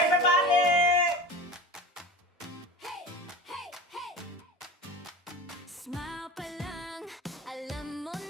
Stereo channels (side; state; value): both; normal; correlation 0.33